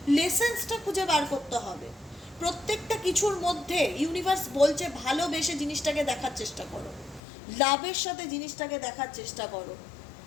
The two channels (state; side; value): drops out; right; at 7.2 s